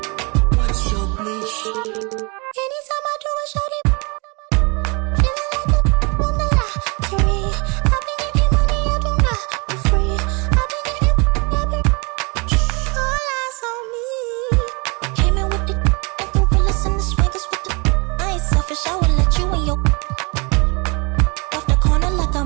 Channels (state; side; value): quieter; left; 30.1 dB